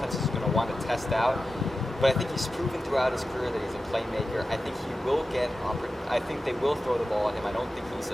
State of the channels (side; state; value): both; normal; correlation 0.93